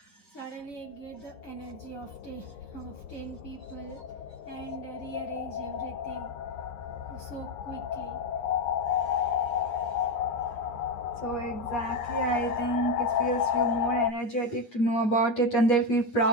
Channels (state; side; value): late; right; 9.7 ms